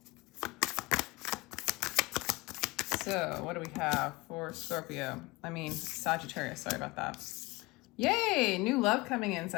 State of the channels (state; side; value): quieter; right; 23.1 dB